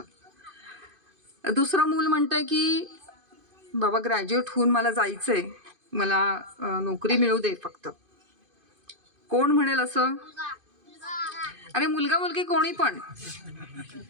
दुसरं मूल म्हणतंय की बाबा ग्रॅज्युएट होऊन मला जायचंय, मला नोकरी मिळू दे फक्त. कोण म्हणेल असं? अरे मुलगा मुलगी कोणी पण,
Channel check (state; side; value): late; left; 2.5 ms